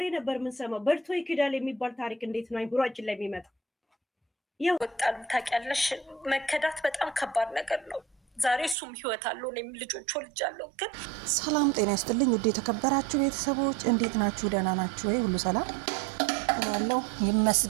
ነበር የምንሰማው። በልቶ ይክዳል የሚባል ታሪክ እንዴት ነው አይምሯችን ላይ የሚመጣ? ወጣሉ ታውቂያለሽ፣ መከዳት በጣም ከባድ ነገር ነው። ዛሬ እሱም ህይወት አለው፣ እኔም ልጆች ወልጃለሁ። ግን ሰላም ጤና ይስጥልኝ ውድ የተከበራችሁ ቤተሰቦች እንዴት ናችሁ? ደህና ናችሁ ወይ? ሁሉ ሰላም ያለው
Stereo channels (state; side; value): drops out; left; at 8.8 s